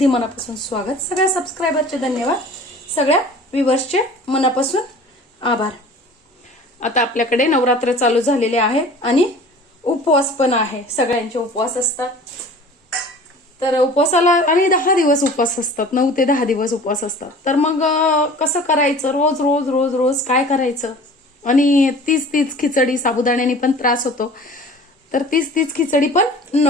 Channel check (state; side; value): normal; both; correlation 0.44